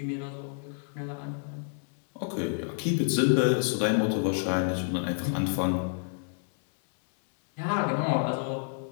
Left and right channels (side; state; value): right; silent; 59 dB below the other